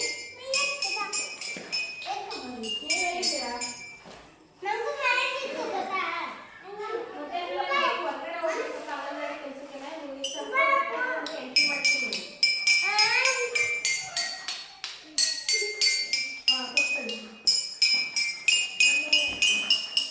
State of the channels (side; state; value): both; identical; correlation 1.00